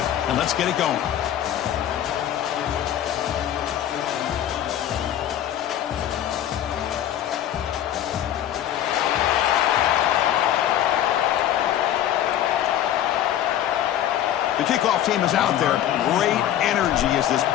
and let's get it going. The kickoff team is out there. Great energy as this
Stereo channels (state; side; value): quieter; right; 11.3 dB